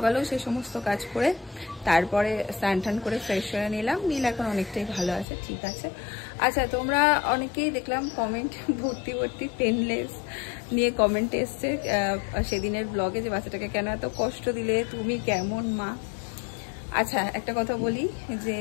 সেই সমস্ত কাজ করে তারপরে স্নান টান করে ফ্রেশ হয়ে নিলাম। নীল এখন অনেকটাই ভালো আছে, ঠিক আছে। আচ্ছা, তোমরা অনেকেই দেখলাম কমেন্ট ভর্তি ভর্তি পেনলেস নিয়ে কমেন্ট এসছে সেদিনের ব্লগে, যে বাচ্চাটাকে কেন এত কষ্ট দিলে, তুমি কেমন মা। আচ্ছা, একটা কথা বলি যে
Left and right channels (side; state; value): right; drops out; at 5.2 s